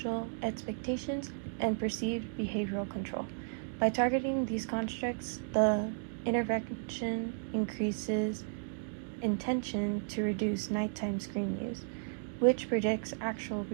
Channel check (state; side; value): silent; left; digital silence